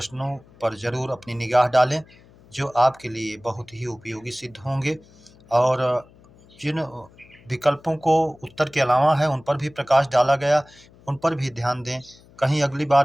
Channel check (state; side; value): noise; left; hum, 26 dB below the sound